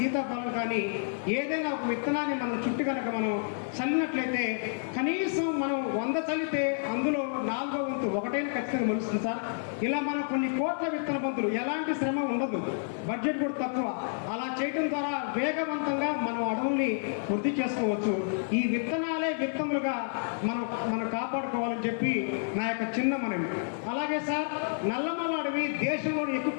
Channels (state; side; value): silent; right; 58 dB below the other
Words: కానీ ఏదైనా ఒక విత్తనాన్ని మనం చుట్టూ కనుక మనం చల్లినట్లయితే కనీసం మనం 100 చల్లితే అందులో 4వ వంతు ఒకటైనా ఖచ్చితంగా మొలుస్తుంది సార్. ఇలా మనం కొన్ని కోట్ల విత్తన బంతులు, ఎలాంటి శ్రమ ఉండదు, బడ్జెట్ కూడా తక్కువ. అలా చేయడం ద్వారా వేగవంతంగా మనం అడవుల్ని వృద్ధి చేసుకోవచ్చు. ఈ విత్తనాలే విత్తములుగా మనం కాపాడుకోవాలని చెప్పి నా యొక్క చిన్న మనవి. అలాగే సార్, నల్లమల అడవి దేశంలో ఎక్కువ